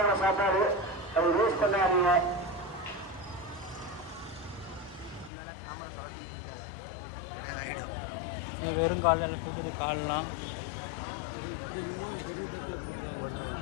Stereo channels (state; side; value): drops out; right; at 5.3 s